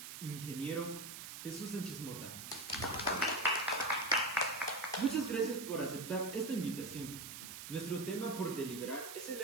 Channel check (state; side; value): noise; right; hiss, 9 dB below the sound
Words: ingeniero Jesús Sánchez Mota. Muchas gracias por aceptar esta invitación. Nuestro tema por deliberar es el